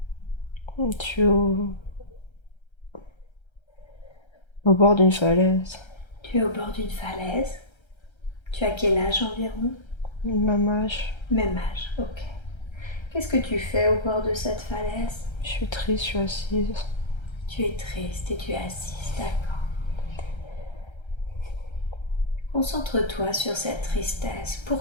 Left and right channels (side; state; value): right; late; 1.3 ms